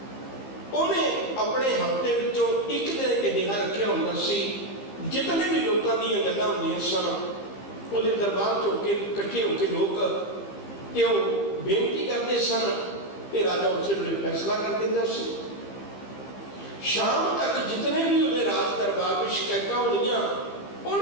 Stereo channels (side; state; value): right; late; 15 ms